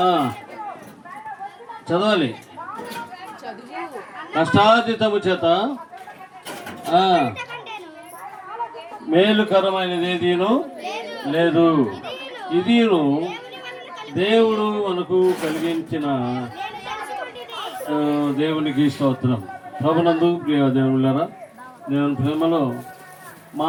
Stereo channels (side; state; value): both; identical; correlation 1.00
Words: చదవాలి. కష్టార్జితము చేత మేలుకరమైనది ఏదీను లేదు. ఇదిను దేవుడు మనకు కలిగించిన దేవునికి స్తోత్రం. ప్రభునందు ప్రియ దేవునులారా, దేవుని ప్రేమలో